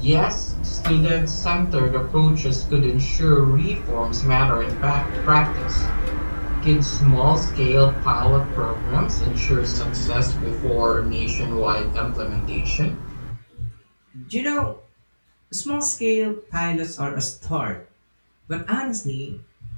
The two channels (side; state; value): both; inverted; correlation -1.00